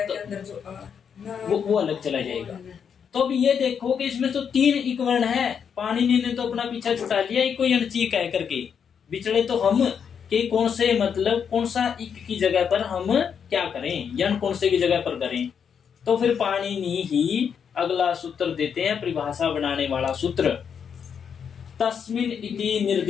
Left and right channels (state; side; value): quieter; right; 7.3 dB